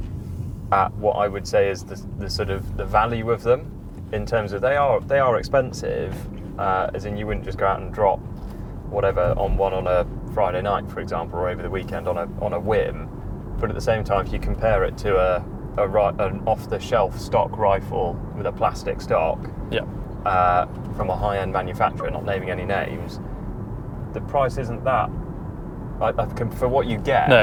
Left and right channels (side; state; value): both; identical; correlation 1.00